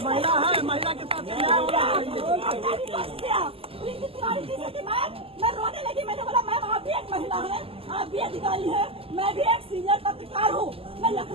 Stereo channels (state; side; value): late; left; 0.27 ms